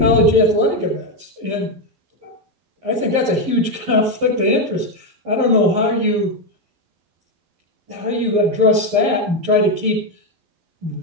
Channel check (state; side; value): late; left; 11 ms